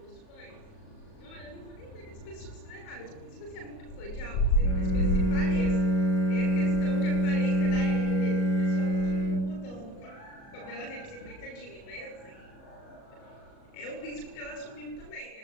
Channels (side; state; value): right; late; 37 ms